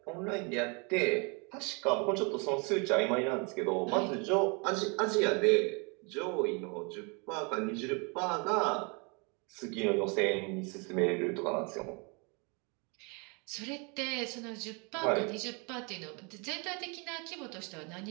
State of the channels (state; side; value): quieter; left; 32.7 dB